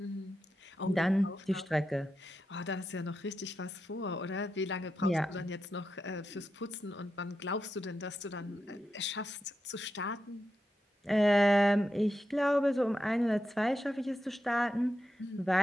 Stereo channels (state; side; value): normal; both; correlation 0.88